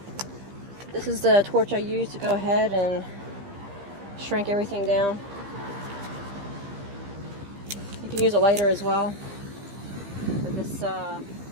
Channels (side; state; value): left; late; 15 ms